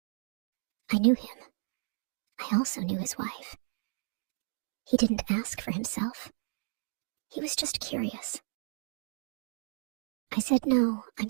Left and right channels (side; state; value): left; silent; digital silence